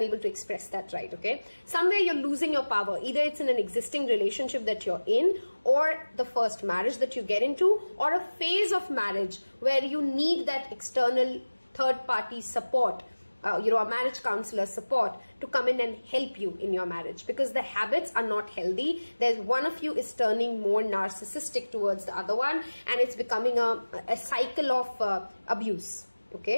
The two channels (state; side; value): inverted; both; correlation -1.00